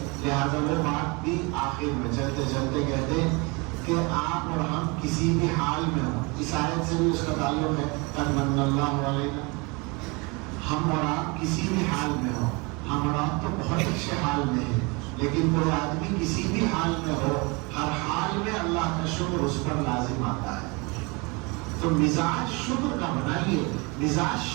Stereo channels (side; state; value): left; quieter; 28.3 dB